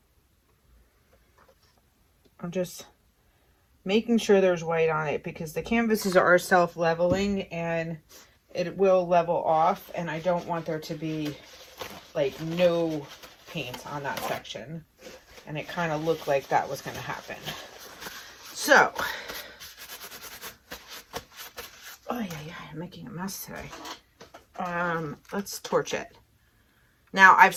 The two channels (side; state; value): both; identical; correlation 1.00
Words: I'm just making sure there's white on it because the canvases are self-leveling and it will level off, and I don't want there to be like no paint on that section. And it kind of looked like that was going to happen. So, oh yeah, I'm making a mess today. Let's torch it. Now, I've